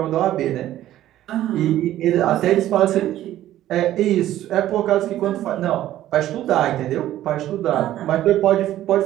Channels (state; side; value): quieter; left; 13.3 dB